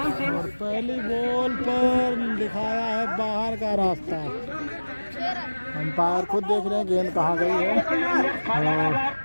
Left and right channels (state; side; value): inverted; both; correlation -1.00